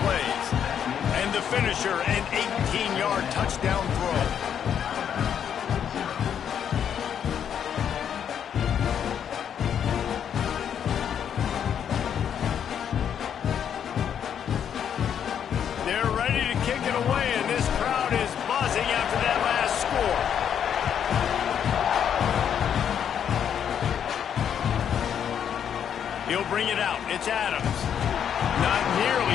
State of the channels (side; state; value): right; quieter; 8.6 dB